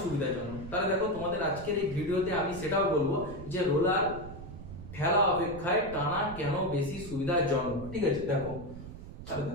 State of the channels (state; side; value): noise; right; rumble, 12 dB below the sound